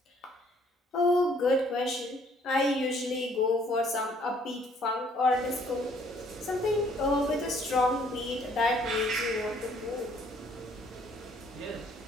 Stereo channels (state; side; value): normal; both; correlation 0.62